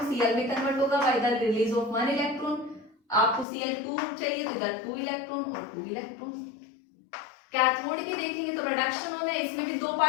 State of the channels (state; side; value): drops out; right; at 3.5 s